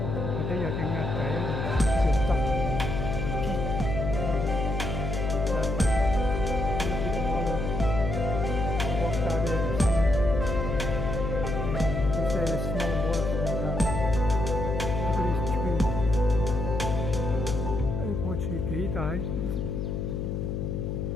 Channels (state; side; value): noise; left; hum, 2 dB below the sound